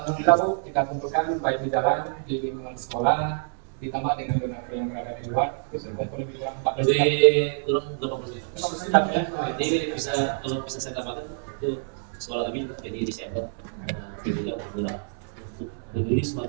Bu, kita kumpulkan baik di jalan, di lingkungan sekolah, ditambah dengan donatur yang berada di luar, itu sudah lebih kurang 4 Jadi juta. kurang 80%. 50% ya. Jadi bisa kalau bisa saya katakan itu sekolah kami juga jadi Desember juga bergerak untuk peduli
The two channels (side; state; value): left; silent; digital silence